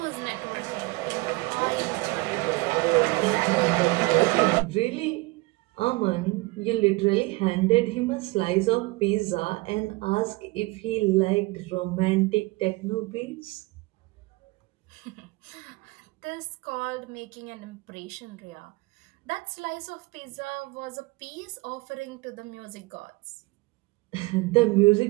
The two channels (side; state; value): left; quieter; 23.6 dB